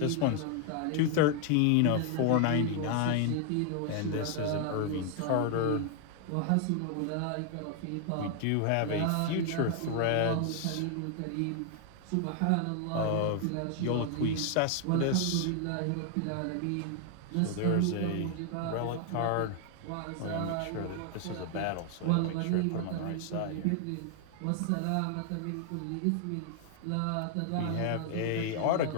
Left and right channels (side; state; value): both; different; correlation 0.00